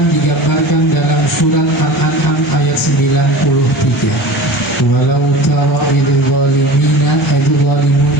digambarkan dalam surat Al-An'am ayat 93. Walau tara idil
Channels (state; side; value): normal; both; correlation 0.36